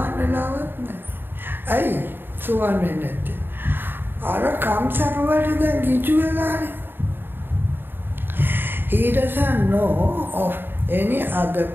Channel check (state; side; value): late; left; 0.098 ms